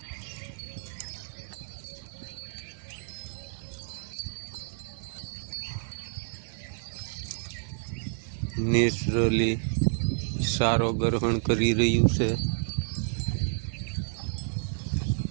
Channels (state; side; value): silent; left; 58 dB below the other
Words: નેચરલી સારો ગ્રહણ કરી રહ્યું છે।